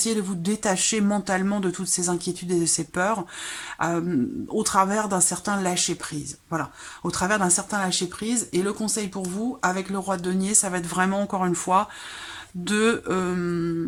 de vous détacher mentalement de toutes ces inquiétudes et de ces peurs au travers d'un certain lâcher-prise. Voilà, au travers d'un certain lâcher-prise. Et le conseil pour vous, avec le roi de denier, ça va être vraiment, encore une fois, de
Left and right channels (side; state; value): both; identical; correlation 1.00